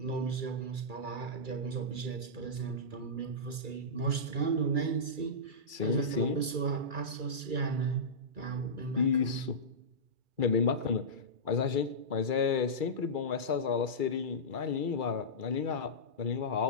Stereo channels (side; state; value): left; late; 2.3 ms